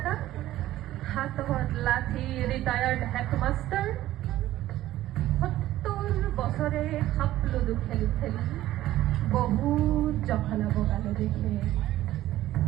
হাতত লাঠি ৰিটায়াৰ্ড হেডমাষ্টাৰ, 70 বছৰে সাপলুডু খেলি খেলি বহুত জখলা বগালে দেখে,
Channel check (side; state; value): left; quieter; 14.6 dB